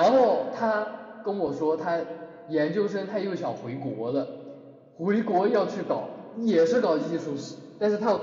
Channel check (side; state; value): both; identical; correlation 1.00